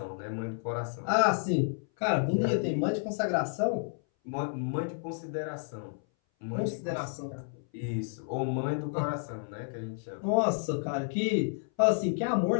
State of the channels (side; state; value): right; silent; 57 dB below the other